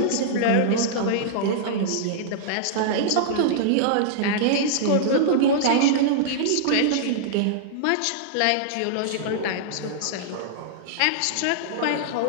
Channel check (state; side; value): different; both; correlation -0.02